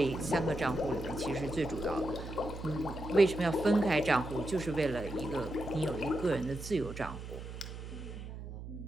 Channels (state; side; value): noise; right; hum, 10 dB below the sound